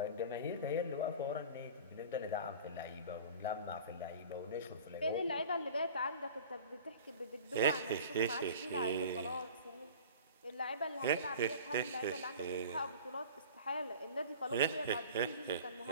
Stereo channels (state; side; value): inverted; both; correlation -0.41